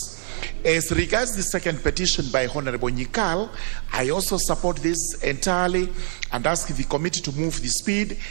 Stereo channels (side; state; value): left; silent; digital silence